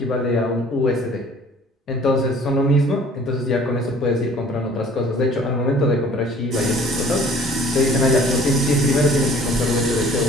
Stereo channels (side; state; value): both; normal; correlation 0.52